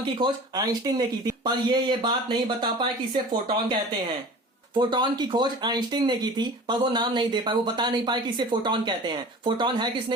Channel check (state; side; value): normal; both; correlation 0.40